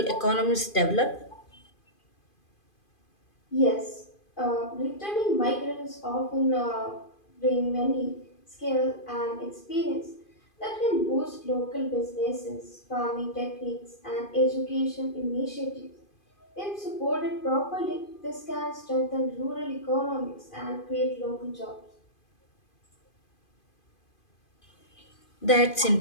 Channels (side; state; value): right; late; 2.5 ms